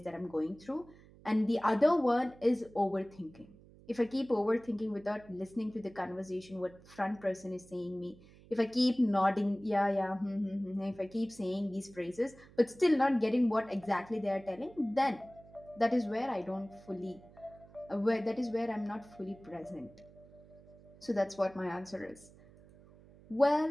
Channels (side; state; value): right; noise; hum, 23 dB below the sound